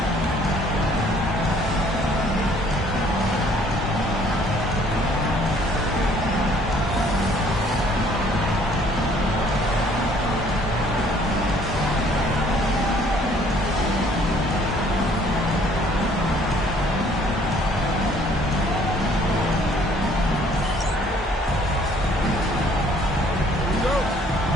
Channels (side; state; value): both; normal; correlation 0.59